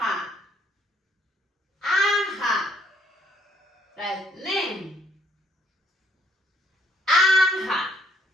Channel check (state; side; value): normal; both; correlation 0.66